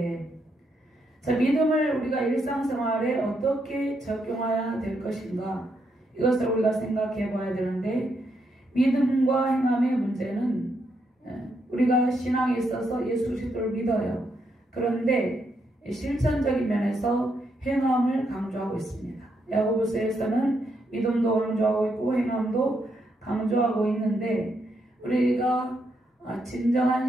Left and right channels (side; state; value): both; normal; correlation 0.79